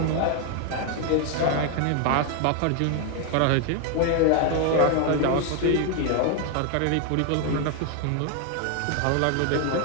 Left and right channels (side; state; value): both; different; correlation 0.01